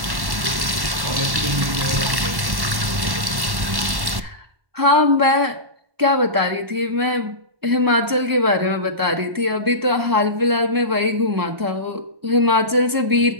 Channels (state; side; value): late; left; 1.1 ms